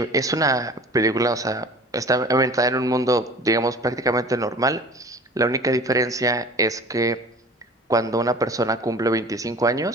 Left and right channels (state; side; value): normal; both; correlation 0.42